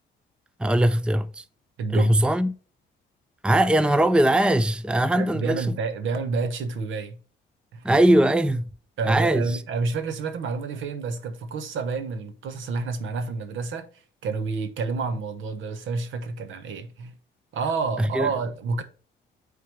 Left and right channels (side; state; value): both; normal; correlation 0.81